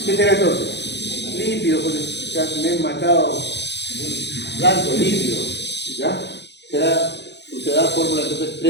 ¿Qué será entonces? Lípido, pues ya me he matado. Blanco, lípido. ¿Ya? Será fórmula entonces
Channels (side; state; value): right; late; 0.50 ms